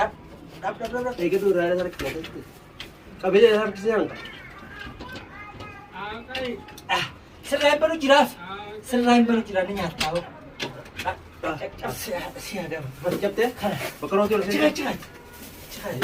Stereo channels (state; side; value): identical; both; correlation 1.00